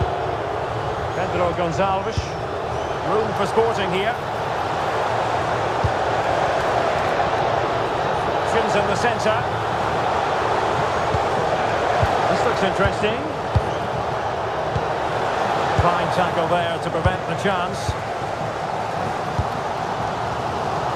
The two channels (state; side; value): identical; both; correlation 1.00